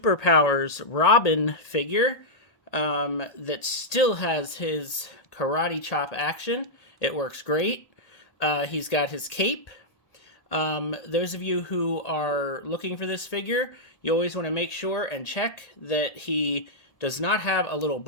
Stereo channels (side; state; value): right; late; 1.8 ms